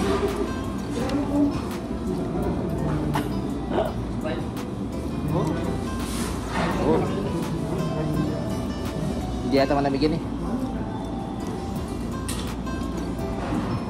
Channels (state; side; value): identical; both; correlation 1.00